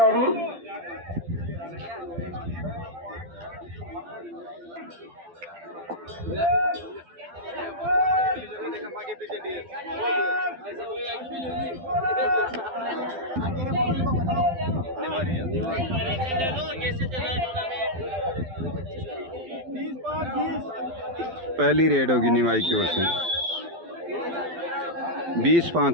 पहली रेड होगी निवाई की ओर से।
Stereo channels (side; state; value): left; late; 12 ms